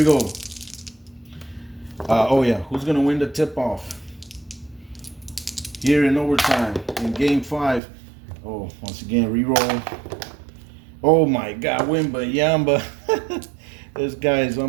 go. Oh yeah, who's going to win the tip-off? Here in overtime, in Game 5. Oh, once again, re-roll. Oh my God, Wembanyama. This guy is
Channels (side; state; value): left; drops out; at 7.8 s